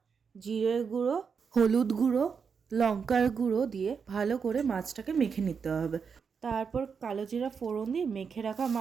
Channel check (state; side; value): quieter; left; 6.1 dB